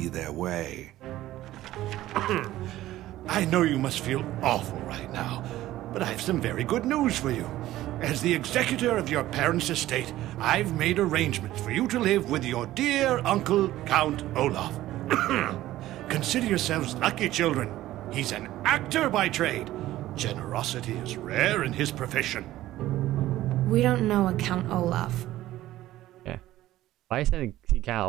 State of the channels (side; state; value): left; quieter; 15.0 dB